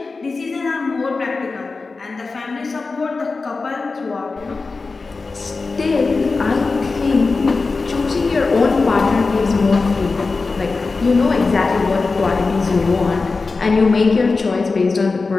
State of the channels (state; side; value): quieter; right; 4.0 dB